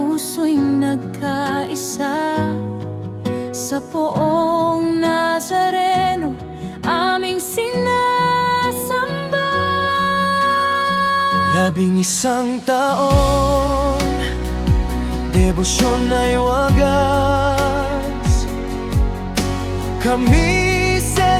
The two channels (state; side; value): identical; both; correlation 1.00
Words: nagkaisa. Sa Poong Nazareno, aming sinasamba. 11 taon, debosyon ay wagas. Kami